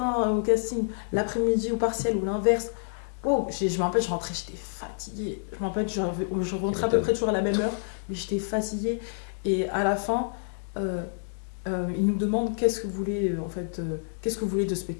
au casting, l'après-midi au partiel ou l'inverse. Oh, je me rappelle, je rentrais, j'étais fatiguée. Je me rappelle, je rentrais à peu près toujours à la même heure, mais j'étais fatiguée. Et à la fin, ils nous demandent qu'est-ce que vous voulez, qu'est-ce que vous voulez de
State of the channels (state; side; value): silent; right; digital silence